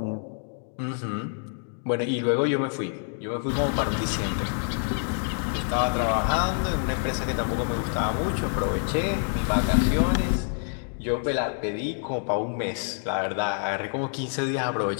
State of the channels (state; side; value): silent; right; 60 dB below the other